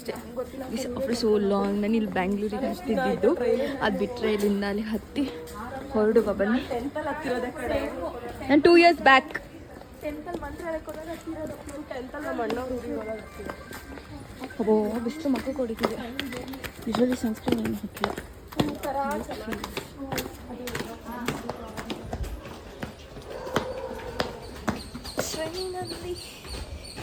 So long. ನಾನು ಇಲ್ಲಿ ಬ್ಯಾಂಗ್ಳೂರಿಗೆ ಹತ್ತಿದ್ದು, ಅದು ಬಿಟ್ಟರೆ ಇಲ್ಲಿಂದ ಅಲ್ಲಿ ಹತ್ತಿ ಹೊರಡುವ ಬನ್ನಿ. ನಾನು 2 years ಬ್ಯಾಕ್ ಬಿಸಿಲು ಮಕ್ಕ ಕೊಡಿತಿದೆ. ಯೂಶಲಿ ಸನ್ಸ್ಕ್ರೀನ್ ಏನು ಹಾಕಿಲ್ಲ.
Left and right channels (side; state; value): both; identical; correlation 1.00